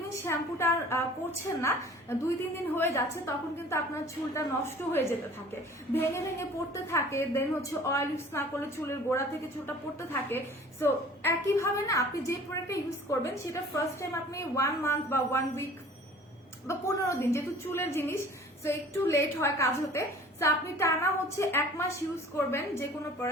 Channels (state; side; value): normal; both; correlation 0.48